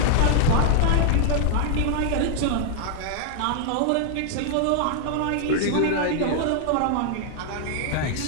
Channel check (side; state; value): both; different; correlation 0.00